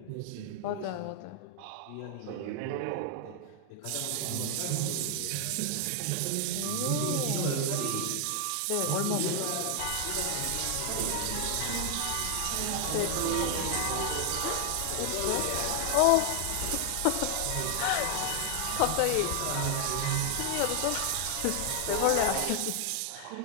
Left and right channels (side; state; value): both; different; correlation 0.00